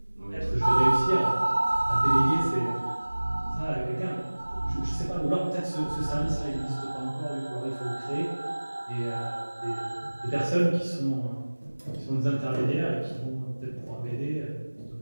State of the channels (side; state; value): both; inverted; correlation -1.00